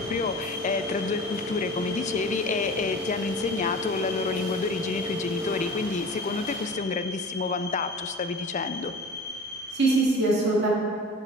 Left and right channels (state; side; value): normal; both; correlation 0.38